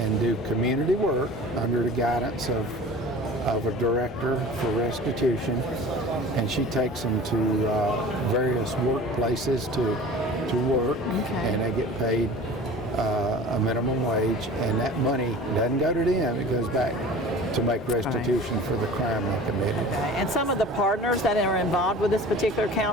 do community work under the guidance of a director for restitution, and she takes them to various workplaces to work, and they get paid a minimum wage, and that money doesn't go to them, it goes back to make restitution for the crime they committed. And some of the partners that are involved with this particular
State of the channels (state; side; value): normal; both; correlation 0.40